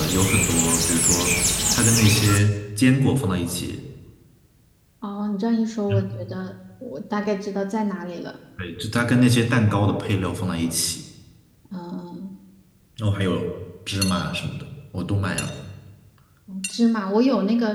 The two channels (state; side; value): identical; both; correlation 1.00